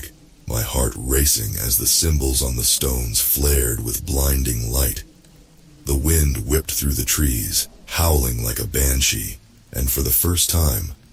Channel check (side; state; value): both; identical; correlation 1.00